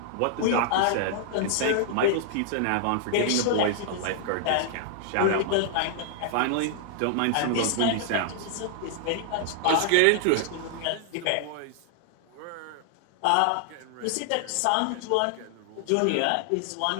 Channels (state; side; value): different; both; correlation 0.00